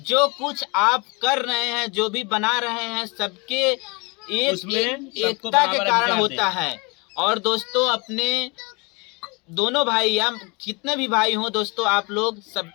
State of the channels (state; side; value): quieter; right; 28.8 dB